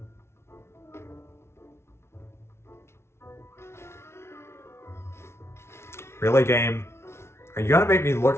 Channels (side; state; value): right; late; 0.12 ms